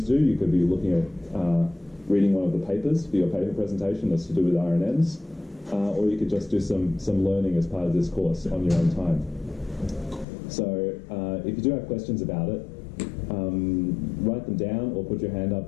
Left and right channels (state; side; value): drops out; right; at 10.2 s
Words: to do. You could be looking at reading one of the papers for your paper presentation that's to do with RNNs, or you could just do some learning as part of this course on your own time. So if you do have questions about it, write them down or put your hand